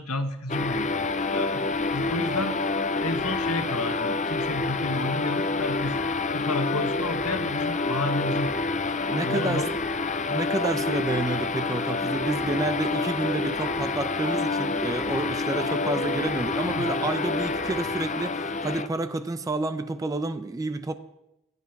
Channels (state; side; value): normal; both; correlation 0.35